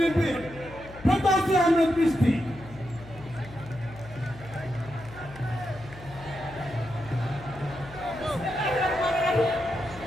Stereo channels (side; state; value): left; noise; hum, 17 dB below the sound